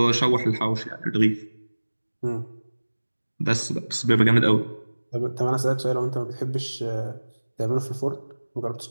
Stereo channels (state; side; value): inverted; both; correlation -1.00